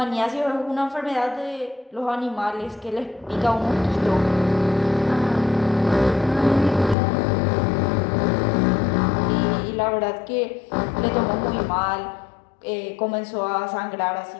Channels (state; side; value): drops out; right; at 7.0 s